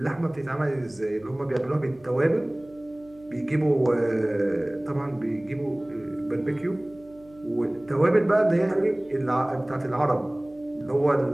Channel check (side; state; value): right; noise; hum, 25 dB below the sound